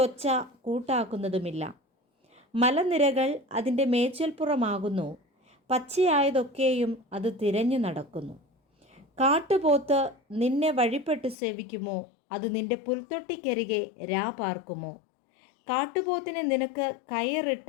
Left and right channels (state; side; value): drops out; right; at 11.4 s